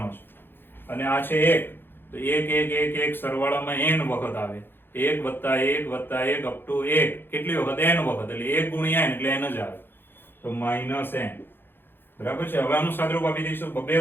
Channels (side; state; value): right; late; 0.10 ms